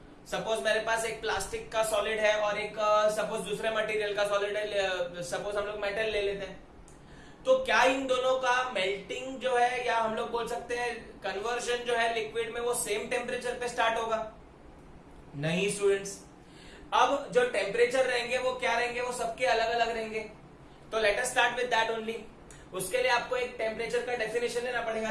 सपोज मेरे पास एक प्लास्टिक का सॉलिड है और एक सपोज दूसरे मटेरियल का सॉलिड है, सपोज हम लोग मेटल ले लेते हैं। तो क्या इन दोनों का मेल्टिंग जो है, या हम लोग बोल सकते हैं कन्वर्जन जो है लिक्विड में, वो सेम टेम्परेचर पे स्टार्ट होगा? नहीं स्टूडेंट्स, अब जो टेम्परेचर रहेंगे वो क्या रहेंगे, वो सबके अलग अलग रहेंगे। तो let us start with that only. उसके लिए आपको एक टेम्परेचर का डेफिनेशन लेना पड़ेगा,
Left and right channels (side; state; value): both; identical; correlation 1.00